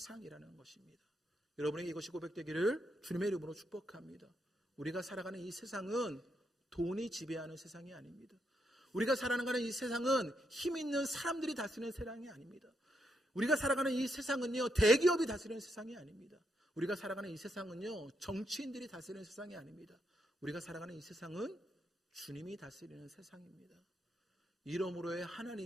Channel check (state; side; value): normal; both; correlation 0.79